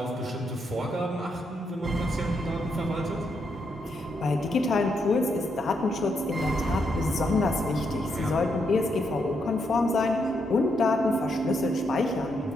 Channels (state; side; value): normal; both; correlation 0.79